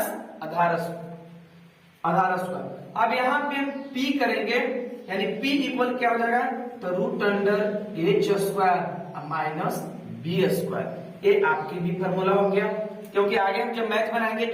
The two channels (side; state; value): both; identical; correlation 1.00